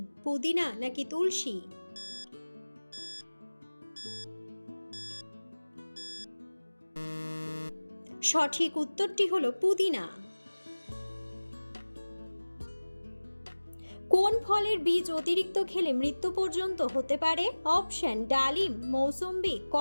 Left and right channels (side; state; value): both; inverted; correlation -1.00